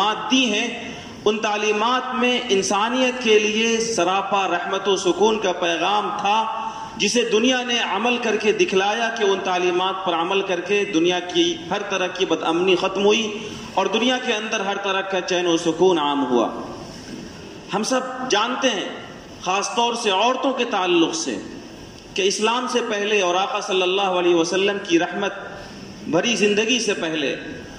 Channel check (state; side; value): identical; both; correlation 1.00